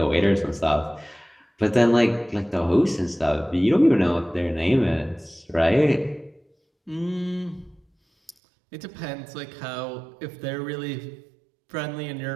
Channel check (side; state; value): left; drops out; at 8.3 s